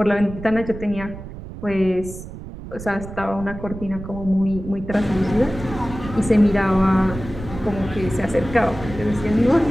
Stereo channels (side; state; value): right; noise; rumble, 12 dB below the sound